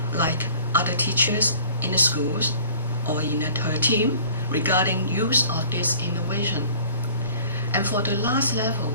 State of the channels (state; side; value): inverted; both; correlation -0.49